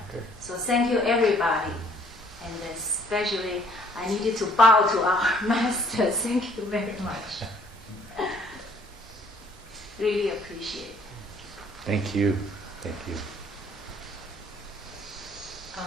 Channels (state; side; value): normal; both; correlation 0.62